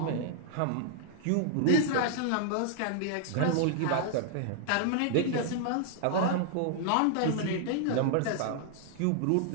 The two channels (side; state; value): both; different; correlation 0.00